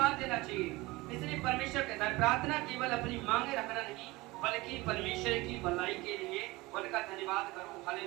देना चाहिए। इसलिए परमेश्वर कहता है, प्रार्थना केवल अपनी मांगे रखना नहीं, बल्कि परमेश्वर की भलाई के लिए उनका धन्यवाद करो।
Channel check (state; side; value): quieter; left; 21.4 dB